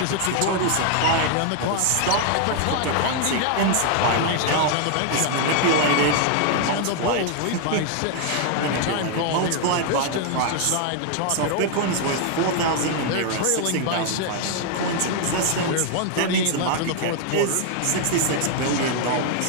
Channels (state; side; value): different; both; correlation 0.00